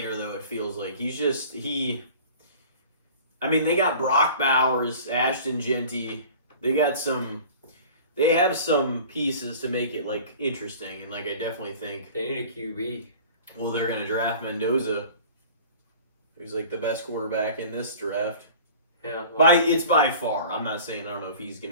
though, it feels like. He's just... I mean, they got Brock Bowers, Ashton Genty. They have some pieces to make it interesting, and I definitely think they need a QB. Well, they're gonna draft Mendoza, who's the best quarterback in this draft. Yeah, it's by far. I'm not saying I don't know if he's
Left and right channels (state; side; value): inverted; both; correlation -0.43